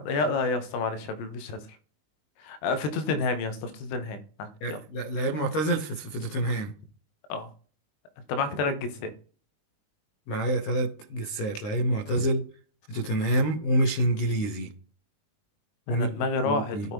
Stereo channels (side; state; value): right; late; 19 ms